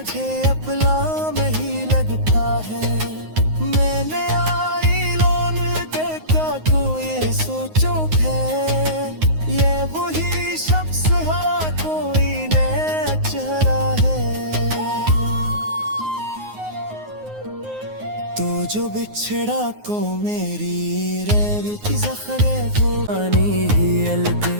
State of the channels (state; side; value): late; left; 9.5 ms